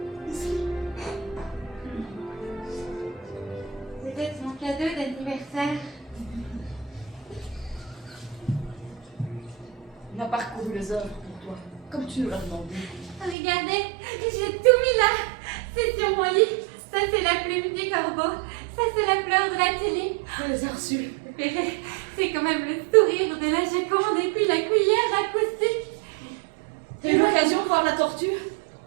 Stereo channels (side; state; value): left; drops out; at 13.4 s